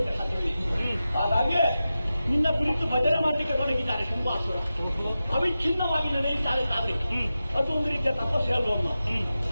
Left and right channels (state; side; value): inverted; both; correlation -0.93